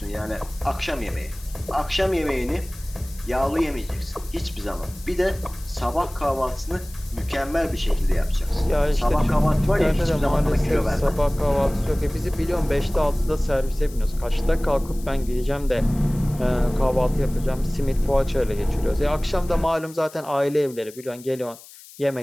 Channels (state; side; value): noise; left; hiss, 20 dB below the sound